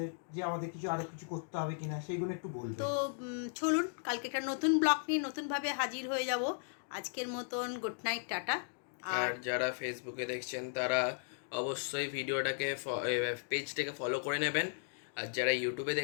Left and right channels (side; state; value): right; silent; digital silence